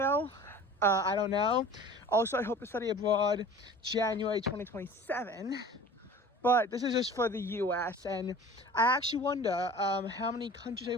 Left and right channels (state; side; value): normal; both; correlation 0.42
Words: I don't know. Also, I hope to study abroad January 2027. But this is just for the US, and I actually wonder how many countries